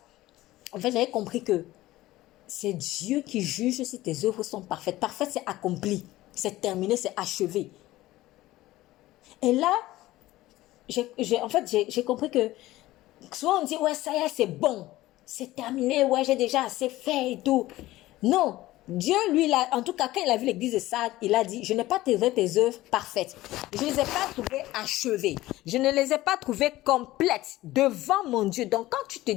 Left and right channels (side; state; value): right; quieter; 16.9 dB